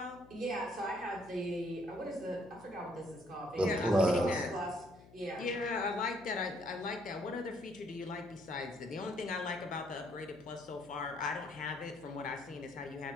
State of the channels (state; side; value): noise; left; hum, 22 dB below the sound